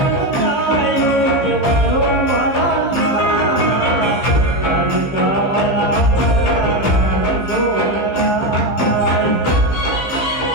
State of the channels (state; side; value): late; right; 15 ms